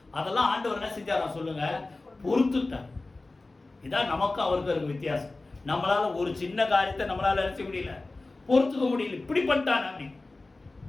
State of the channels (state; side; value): quieter; right; 3.2 dB